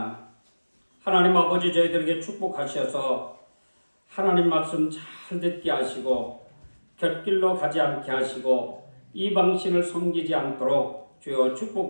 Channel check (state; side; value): inverted; both; correlation -1.00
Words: 하나님 아버지 저희들에게 축복하셔서 하나님 말씀 잘 듣게 하시고 곁길로 가지 않게 하시고 이방신을 섬기지 않도록 주여